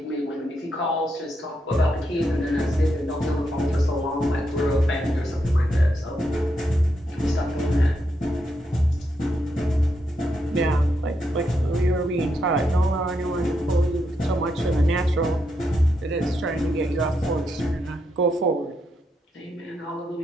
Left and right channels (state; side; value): normal; both; correlation 0.81